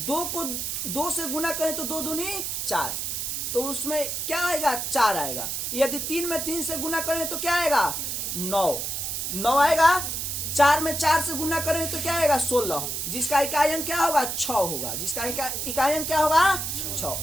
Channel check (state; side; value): noise; right; hiss, 3 dB below the sound